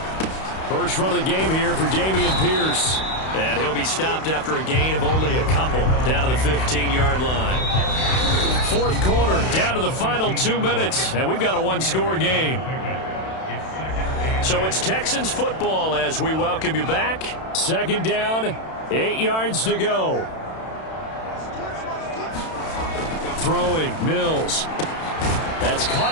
First run of the game here for Dameon Pierce. And he'll be stopped after a gain of only a couple down to the 15-yard line. 4th quarter, down to the final 2 minutes, and we've got a 1-score game. So it's Texans football as we welcome you back. 2nd down, 8 yards to go. Throwing, Mills. That's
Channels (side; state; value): right; late; 31 ms